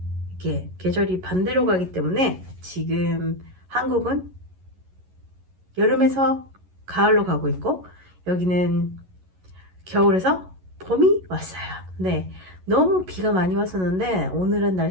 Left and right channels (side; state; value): left; late; 11 ms